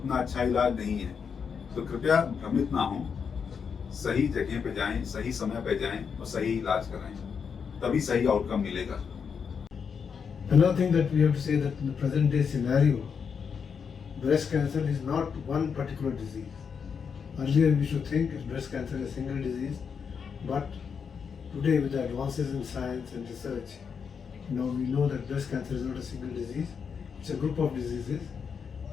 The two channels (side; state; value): right; quieter; 6.4 dB